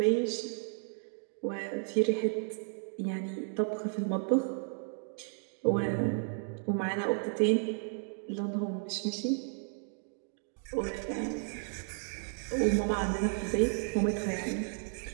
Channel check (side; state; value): left; silent; 56 dB below the other